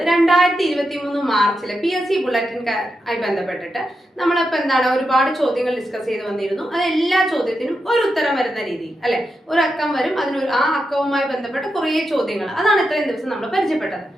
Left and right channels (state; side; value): normal; both; correlation 0.87